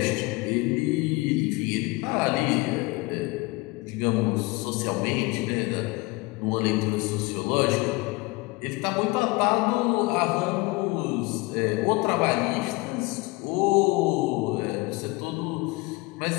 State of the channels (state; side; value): quieter; right; 23.5 dB